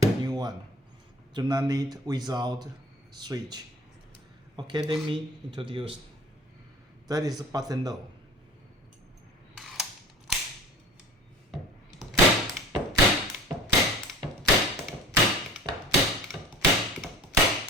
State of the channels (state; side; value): normal; both; correlation 0.41